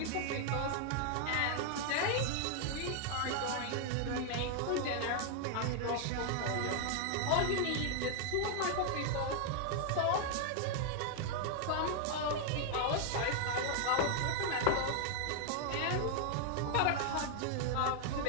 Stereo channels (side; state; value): both; different; correlation 0.00